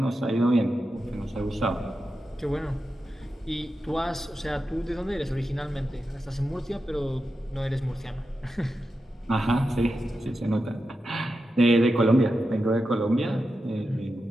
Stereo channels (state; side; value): normal; both; correlation 0.90